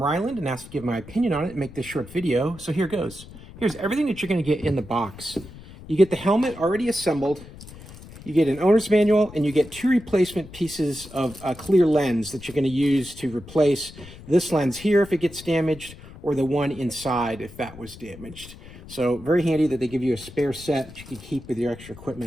and asked to give my opinion on it and make this short video. So here goes. Here's everything that you're going to get in the box. You get the helmet already assembled. You get an owner's manual, and you get 2 replacement pieces of a clear lens that you're going to use to replace this lens here if it gets damaged, or the one inside if that was damaged. So very handy that they give you a spare set that you can keep with your extra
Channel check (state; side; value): noise; left; rumble, 17 dB below the sound